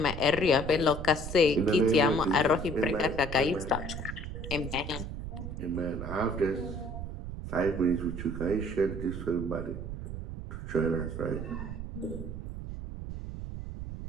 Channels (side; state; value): right; noise; rumble, 7 dB below the sound